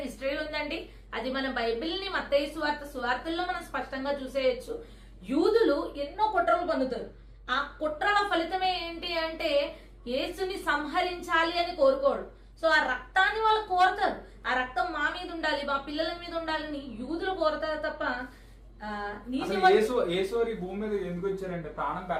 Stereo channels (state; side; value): identical; both; correlation 1.00